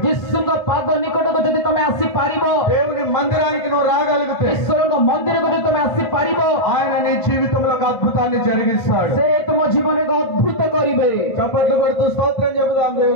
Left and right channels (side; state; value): right; late; 1.5 ms